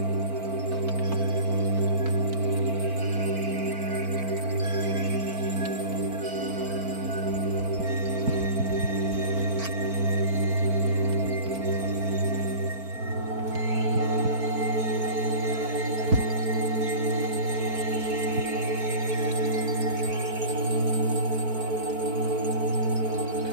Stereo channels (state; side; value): late; left; 4.4 ms